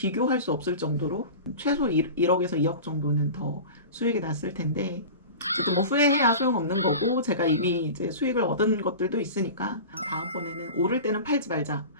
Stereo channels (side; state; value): both; inverted; correlation -0.33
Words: 수 없을 정도로 최소 1억에서 2억 정도는 더 수익이 났을 텐데 저도 뭐 후회해야 소용없는 거고 제가 이미 이제 수익을 얻은 것들도 있으니까 다음번에는 오를 때는 팔지 말자.